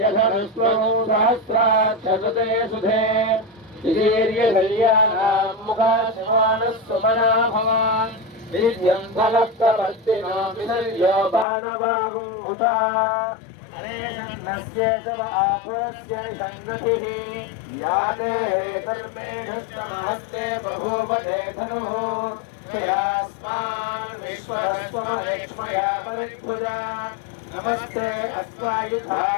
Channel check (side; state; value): right; drops out; at 11.5 s